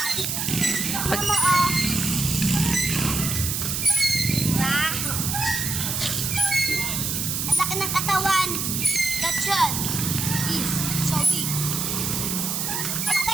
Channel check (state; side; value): noise; right; hiss, 1 dB below the sound